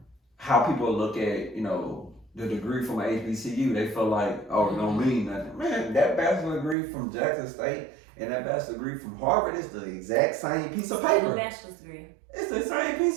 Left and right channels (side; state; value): left; drops out; at 6.8 s